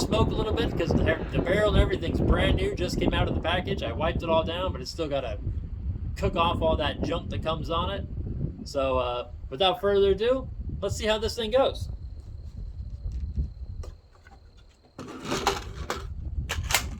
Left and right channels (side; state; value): both; identical; correlation 1.00